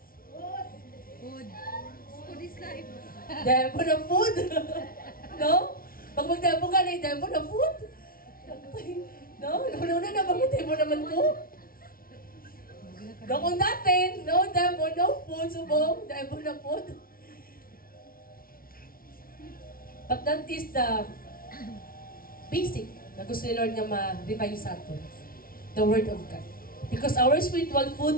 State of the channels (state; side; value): late; right; 0.43 ms